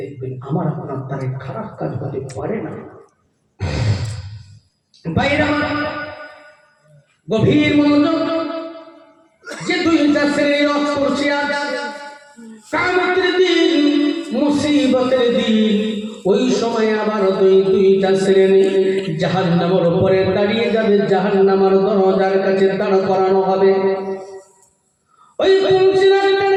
আমার আপনার দ্বারা খারাপ কাজ হতে পারে না। বাইরে গভীর মনোযোগ, যে 2টা শ্রেণীর রথ করছে আজ, কিয়ামতের দিন, মুসিবতের দিন, ওই সময় আবার দুইটা শ্রেণী জাহান্নামের উপরে দাঁড়িয়ে যাবে, জাহান্নামের দরজার কাছে দাঁড় করানো হবে। ওই পুলসিরাতের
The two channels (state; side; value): identical; both; correlation 1.00